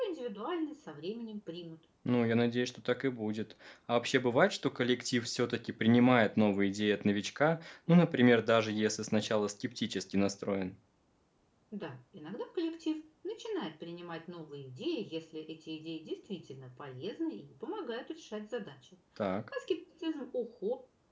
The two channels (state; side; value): identical; both; correlation 1.00